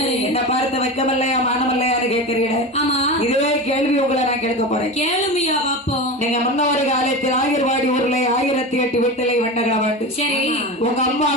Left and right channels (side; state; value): both; normal; correlation 0.26